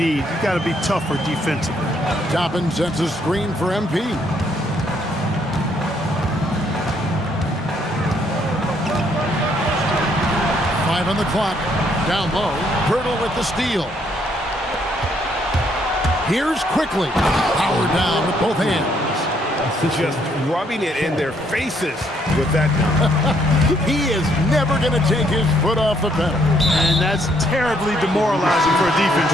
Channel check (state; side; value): normal; both; correlation 0.70